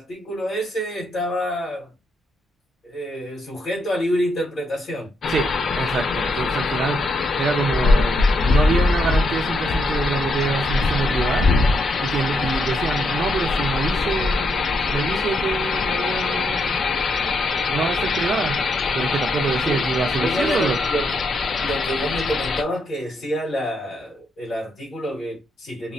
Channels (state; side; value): normal; both; correlation 0.78